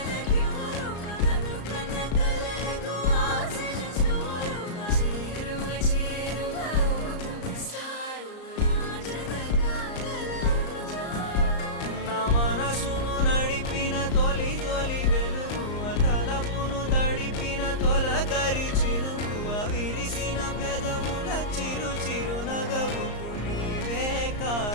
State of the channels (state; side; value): late; right; 34 ms